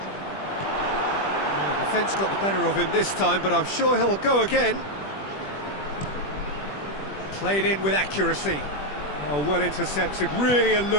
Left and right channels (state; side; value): late; right; 20 ms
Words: Defence got the better of him this time, but I'm sure he'll go again. Played in with accuracy. Oh, well intercepted, really